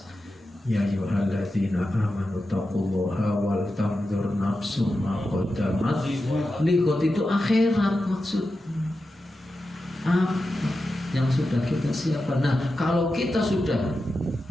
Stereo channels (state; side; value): normal; both; correlation 0.91